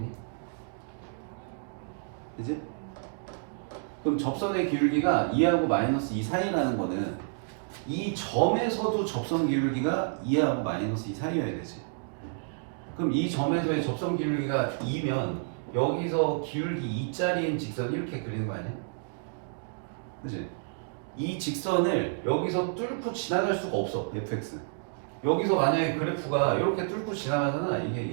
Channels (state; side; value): silent; left; digital silence